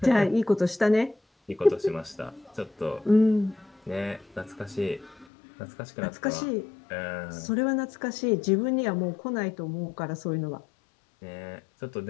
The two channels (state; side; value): drops out; right; at 5.2 s